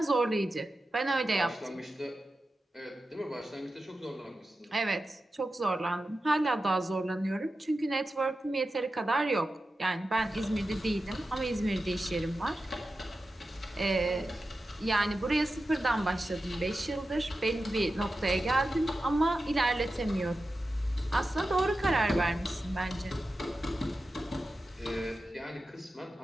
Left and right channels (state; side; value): normal; both; correlation 0.92